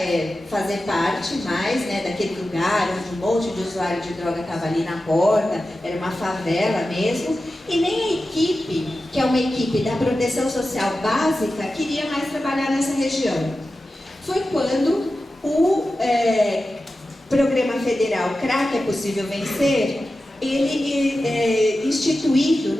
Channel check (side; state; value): both; normal; correlation 0.93